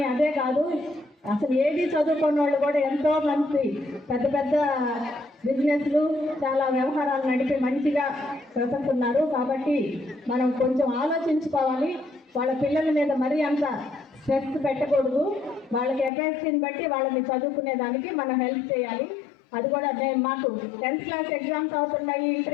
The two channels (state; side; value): drops out; right; at 16.1 s